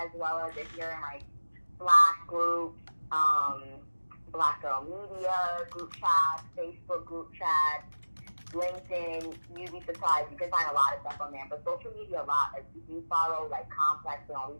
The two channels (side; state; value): both; inverted; correlation -1.00